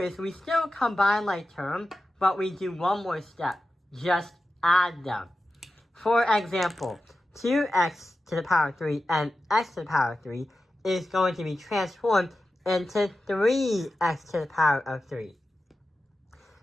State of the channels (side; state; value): both; normal; correlation 0.93